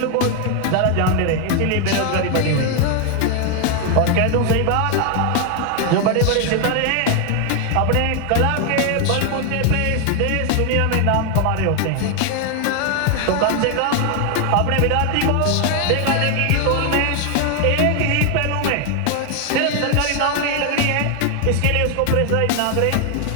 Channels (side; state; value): both; different; correlation 0.01